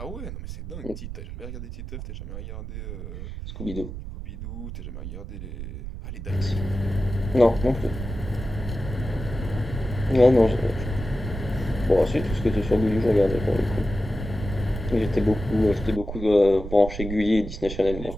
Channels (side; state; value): right; noise; rumble, 8 dB below the sound